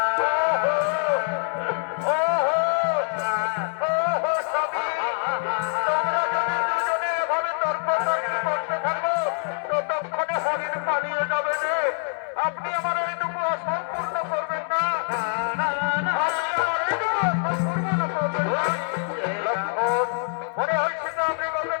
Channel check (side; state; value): right; silent; digital silence